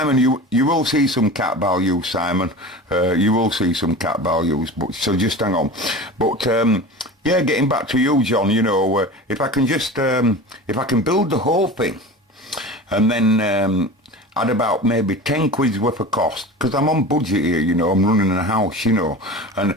you will see some cat values, Simon. You will see some cat values. But so just hang on. But yeah, getting back to you, John. You know, if I can just if I can build the whole thing, and then add about maybe 10 quid's worth of cost, because I'm on budget here, you know, I'm running a house, you know, and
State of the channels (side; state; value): both; normal; correlation 0.34